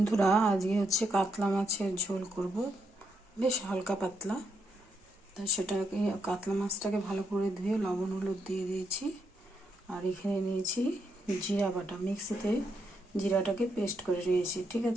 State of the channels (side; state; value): both; normal; correlation 0.79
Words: আজকে হচ্ছে কাতলা মাছের ঝোল করব, বেশ হালকা পাতলা। তাই সেটাকে কাতলা মাছটাকে ভালো করে ধুয়ে লবণ হলুদ দিয়ে দিয়েছি। আর এখানে নিয়েছি জিরা বাটা, মিক্সিতে জিরাটাকে পেস্ট করে নিয়েছি, ঠিক